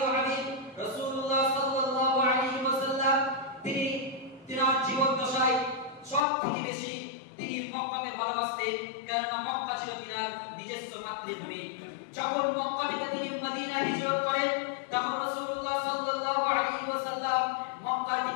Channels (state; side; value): drops out; right; at 6.2 s